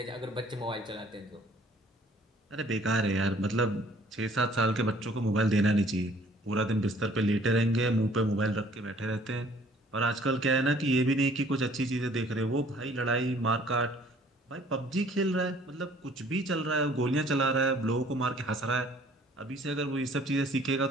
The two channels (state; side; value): normal; both; correlation 0.56